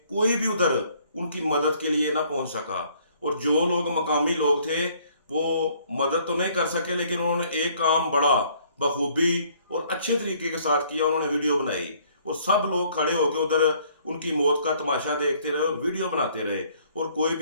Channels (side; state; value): both; inverted; correlation -0.62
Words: कोई भी उधर उनकी मदद के लिए ना पहुंच सका। और जो लोग मकामी लोग थे वो मदद तो नहीं कर सके, लेकिन उन्होंने एक काम बड़ा बखूबी और अच्छे तरीके के साथ किया। उन्होंने वीडियो बनाई और सब लोग खड़े होकर उधर उनकी मौत का तमाशा देखते रहे और वीडियो बनाते रहे। और कोई